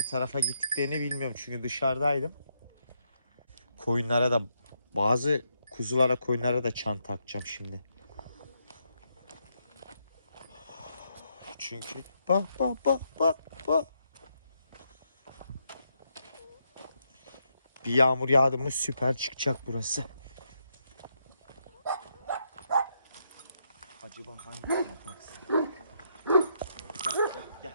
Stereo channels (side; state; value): both; inverted; correlation -0.78